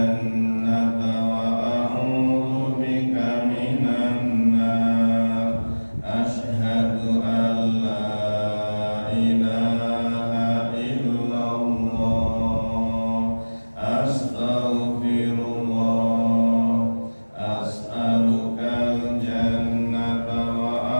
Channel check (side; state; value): both; inverted; correlation -1.00